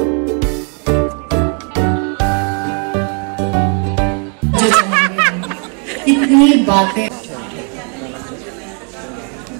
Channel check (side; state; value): left; quieter; 39.7 dB